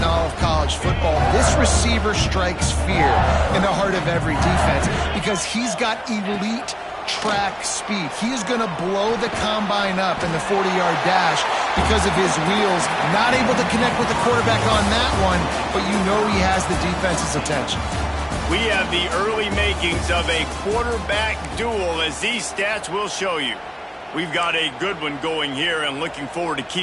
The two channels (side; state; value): both; identical; correlation 1.00